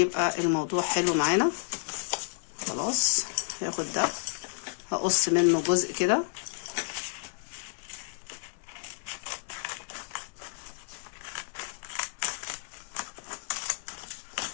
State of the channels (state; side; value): silent; right; digital silence